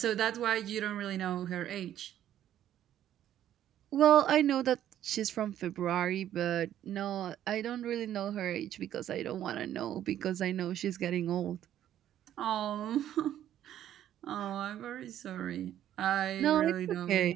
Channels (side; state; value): left; quieter; 11.4 dB